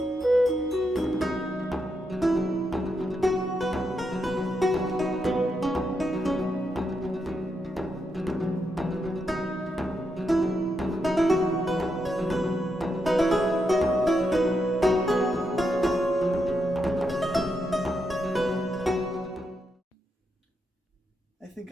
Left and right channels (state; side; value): normal; both; correlation 0.83